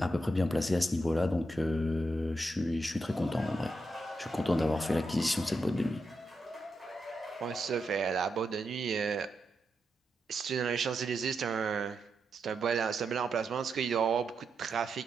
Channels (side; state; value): both; normal; correlation 0.85